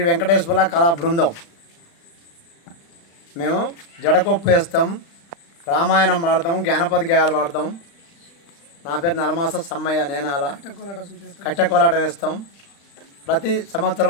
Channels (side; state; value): right; late; 35 ms